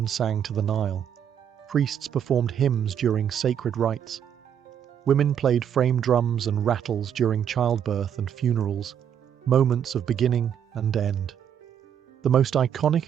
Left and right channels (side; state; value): left; quieter; 8.8 dB